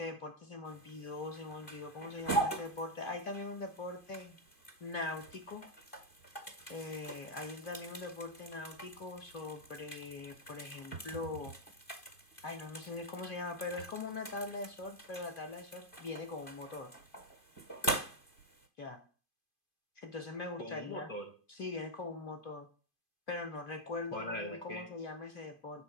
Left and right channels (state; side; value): late; right; 2.5 ms